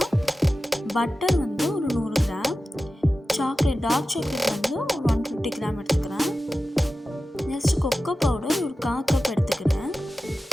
பட்டர் வந்து ஒரு 100 கிராம், டார்க் சாக்லேட் வந்து ஒரு 150 கிராம் எடுத்துக்கிறேன். நெக்ஸ்ட்டு கொக்கோ பவுடர் ஒரு 1/4 கப் எடுத்துக்கிறேன்.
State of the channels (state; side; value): normal; both; correlation 0.94